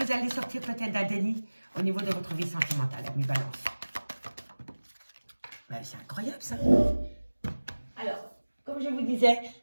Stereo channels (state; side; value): inverted; both; correlation -1.00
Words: allez sortir peut-être d'un déni au niveau de votre vie sentimentale, amis Balance. Ouais, c'est incroyable ça. Alors, comme je vous disais,